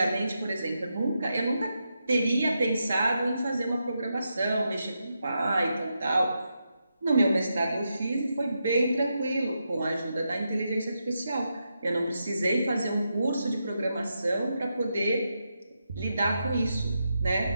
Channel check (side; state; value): both; inverted; correlation -0.85